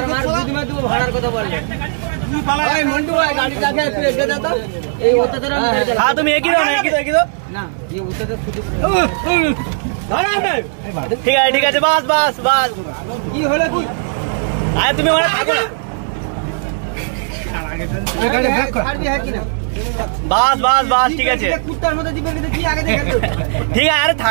মার বুদ্ধি মে তুই ভাড়ার কথা বললে তুই পালা এই মন্টু ভাই গাড়ি চাকে তুই এগিয়ে যা তো এই ওতে তোরা মেরে দে হ্যাঁ তুমি একই দাও না একই দাও না এই ওতে তো খুদি ঠিক আছে বাস বাস বাস কি হলো কি আরে তুমি ওখানে থাকো না গাড়ি ব্যাক কর ছাড়বি হ্যাঁ কি না বাস বাস বাস ঠিক আছে কুত্তার মতো দিবে কিন্তু কি আগে দেখে তো ঠিক আছে আরে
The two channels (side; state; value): left; silent; digital silence